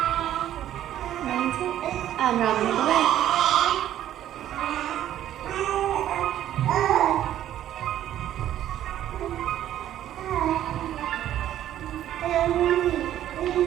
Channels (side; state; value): left; quieter; 12.0 dB